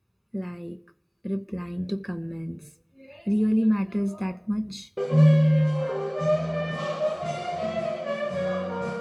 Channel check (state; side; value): identical; both; correlation 1.00